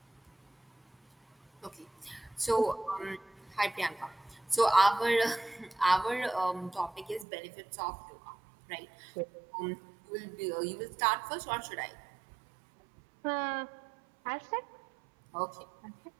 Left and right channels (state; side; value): drops out; left; at 7.2 s